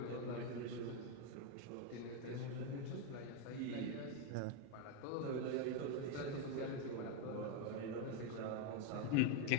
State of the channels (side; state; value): both; different; correlation 0.02